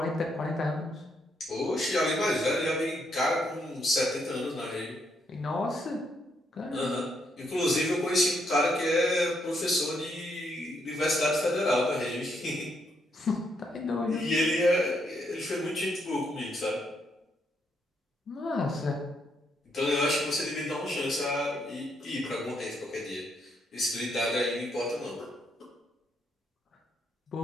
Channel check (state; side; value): normal; both; correlation 0.76